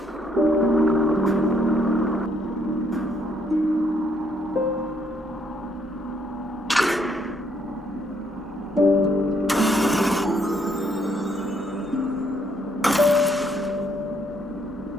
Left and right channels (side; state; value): both; normal; correlation 0.71